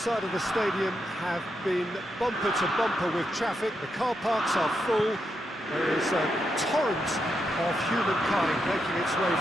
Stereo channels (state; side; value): normal; both; correlation 0.83